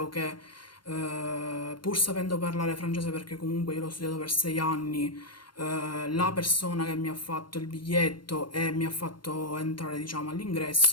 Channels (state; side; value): late; right; 0.72 ms